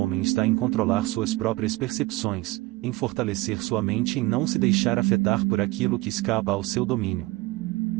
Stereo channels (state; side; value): quieter; left; 20.8 dB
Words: está em controlar suas próprias percepções, em fortalecer sua mente e em não se deixar afetar por aquilo que escapa ao seu domínio.